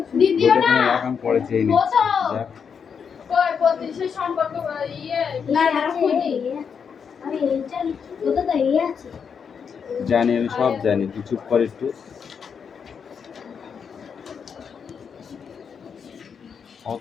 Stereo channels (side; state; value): right; quieter; 6.6 dB